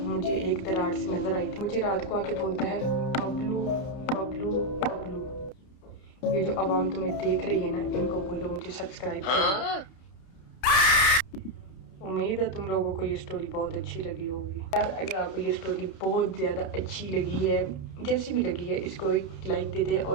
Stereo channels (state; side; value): late; right; 31 ms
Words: एक दरार से नजर आई थी, मुझे रात को आके बोलता है, बबलू बबलू बबलू। ये जो आवाम तुम्हें देख रही है ना, इनको बोलो मुझे सब्सक्राइब करो। उम्मीद है तुम लोगों को ये स्टोरी बहुत अच्छी लगी होगी। यार अगर आपको ये स्टोरी बहुत ज़्यादा अच्छी लगी है, जैसी भी लगी है, इसको एक लाइक दे दें